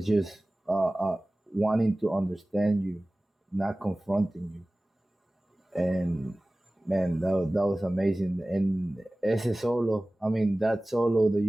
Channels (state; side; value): normal; both; correlation 0.98